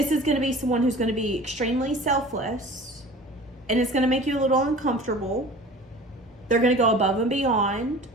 is going to be someone who's going to be extremely selfless, and it's going to make you a little uncomfortable. They're going to go above and beyond.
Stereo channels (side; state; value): both; normal; correlation 0.42